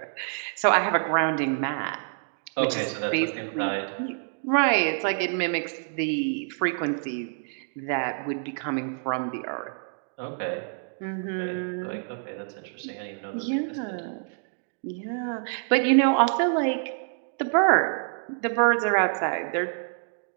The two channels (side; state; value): left; silent; 60 dB below the other